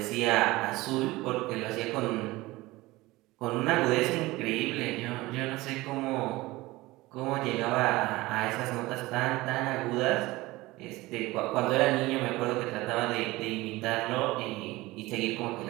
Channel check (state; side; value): quieter; left; 20.0 dB